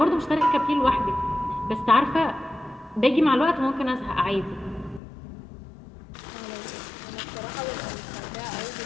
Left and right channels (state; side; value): drops out; right; at 5.0 s